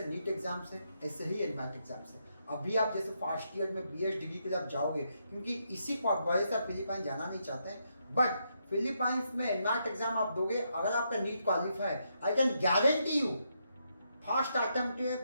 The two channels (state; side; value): inverted; both; correlation -0.79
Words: नीट एग्जाम से ऐसे ही एनमैट एग्जाम से। अभी आप जैसे फर्स्ट ईयर में बीएस डिग्री के लिए आप जाओगे, क्योंकि इसी वजह से आप फिलीपाइन जाना नहीं चाहते हैं, बट फिलीपाइंस में एनमैट एग्जाम आप दोगे, अगर आपका NEET qualify, I can guarantee you first attempt के